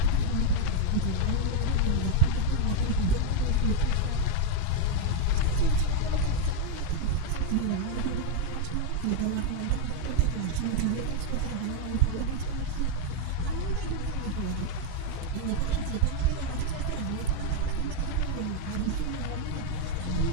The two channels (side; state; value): both; different; correlation 0.00